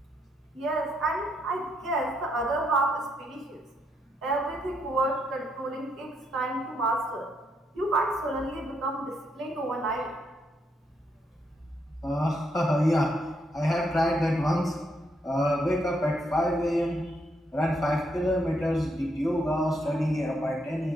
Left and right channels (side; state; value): both; normal; correlation 0.77